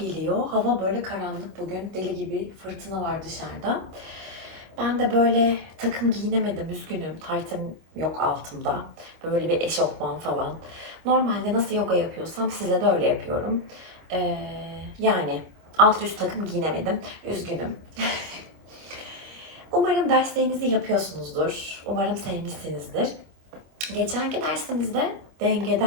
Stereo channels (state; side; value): late; left; 25 ms